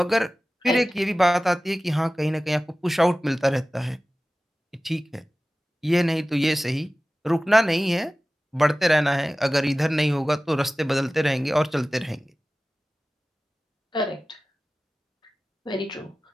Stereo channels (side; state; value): both; normal; correlation 0.97